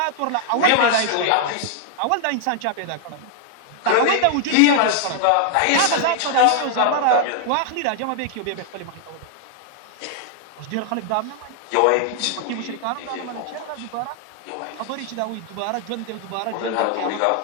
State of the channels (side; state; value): both; different; correlation 0.00